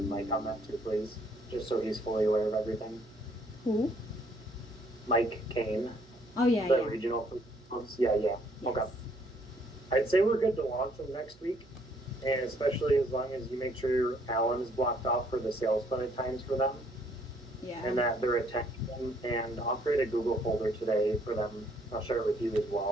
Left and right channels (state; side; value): noise; right; hum, 27 dB below the sound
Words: Mike on that too, please? Just so he's fully aware of everything. Who? Mike Kane, Oh yeah, the yeah. regional. Yeah. Okay. I'd say we're good to launch them next week, and especially as long as you make sure Alan is blocked off for the sales clinic times for them, Yeah. and that they're attending them. And I'll create a Google folder today for them. I'll share it with you as